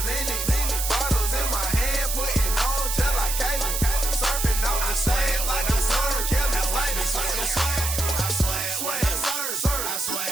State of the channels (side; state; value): right; noise; hiss, 2 dB below the sound